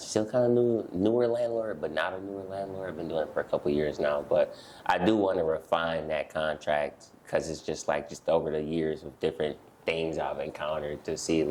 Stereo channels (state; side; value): identical; both; correlation 1.00